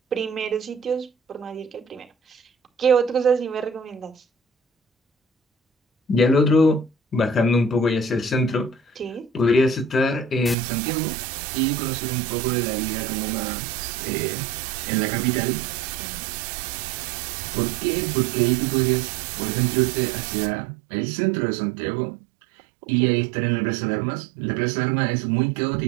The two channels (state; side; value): drops out; left; at 10.6 s